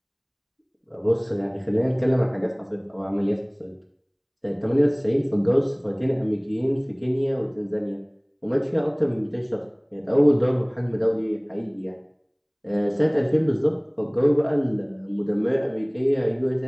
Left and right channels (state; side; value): identical; both; correlation 1.00